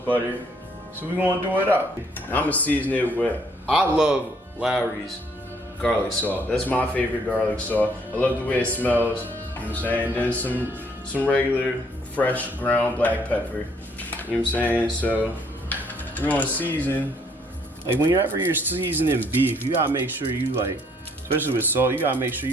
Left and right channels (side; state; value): both; normal; correlation 0.66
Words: So we're gonna do it up. I'm gonna season it with, I love Lawry's garlic salt. That's my favorite garlic salt. I love the way it smells, you know what I'm saying? Then some regular fresh ground black pepper, you know what I'm saying? So we're gonna season, like whenever you're seasoning beef, you gotta make sure you like, especially with salt, you gotta make sure